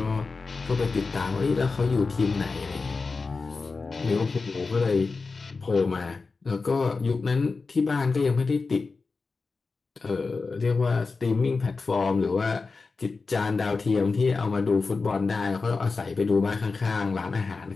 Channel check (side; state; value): right; quieter; 4.2 dB